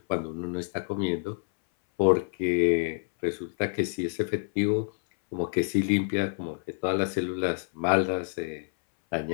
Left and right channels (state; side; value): silent; right; 60 dB below the other